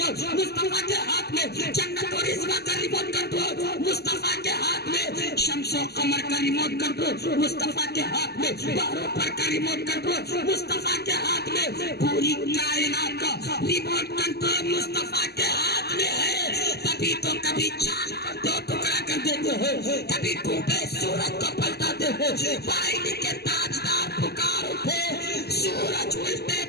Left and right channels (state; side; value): late; right; 0.47 ms